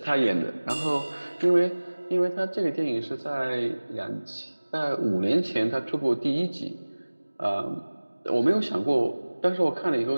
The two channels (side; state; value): both; inverted; correlation -1.00